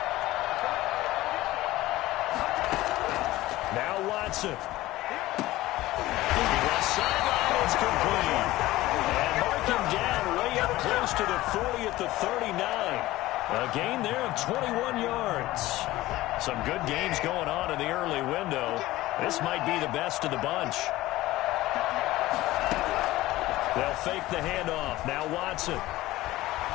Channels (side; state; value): right; quieter; 17.2 dB